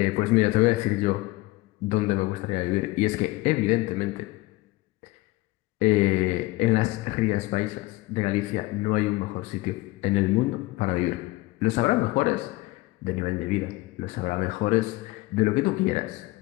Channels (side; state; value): right; quieter; 20.4 dB